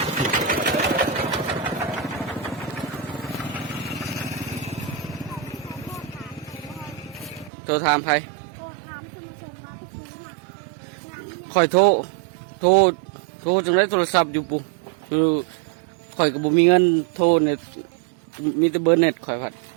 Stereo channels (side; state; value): left; drops out; at 7.5 s